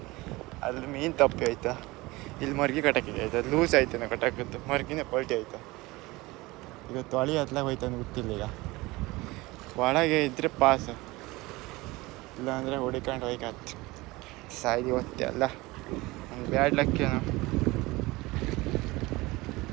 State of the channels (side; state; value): left; quieter; 21.4 dB